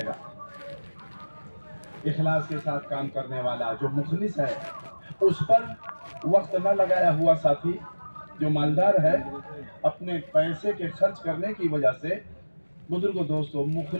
گا. اخلاص کے ساتھ کام کرنے والا جو مخلص ہے اس پر وقت نہ لگایا ہوا ساتھی جو مالدار ہے اپنے پیسے کے خرچ کرنے کی وجہ سے بزرگوں دوستوں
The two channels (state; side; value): inverted; both; correlation -1.00